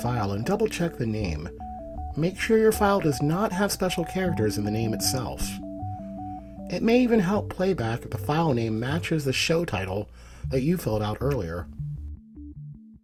and double-check the name. Make sure your file does not have special characters in the name itself. It may even help Playback if the file name matches the show title that you filled out earlier.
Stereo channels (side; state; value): both; identical; correlation 1.00